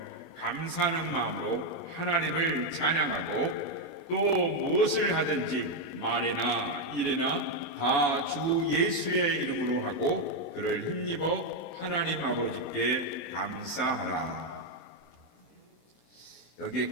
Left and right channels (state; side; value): late; right; 24 ms